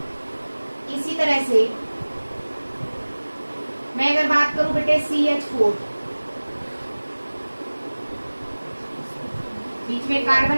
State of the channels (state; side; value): inverted; both; correlation -1.00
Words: इसी तरह से मैं अगर बात करूं बेटे CH4, बीच में